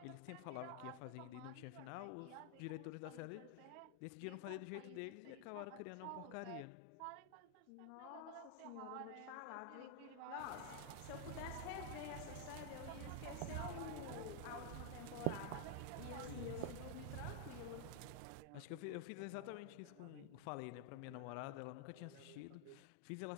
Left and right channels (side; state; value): both; different; correlation 0.00